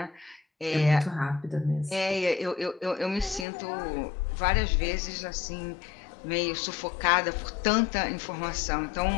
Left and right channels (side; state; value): right; drops out; at 3.5 s